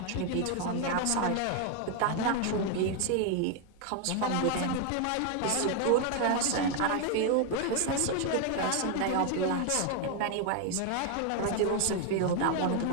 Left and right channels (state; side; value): different; both; correlation 0.01